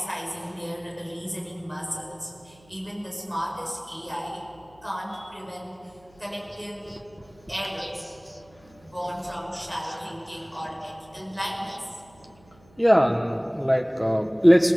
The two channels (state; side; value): noise; right; hum, 28 dB below the sound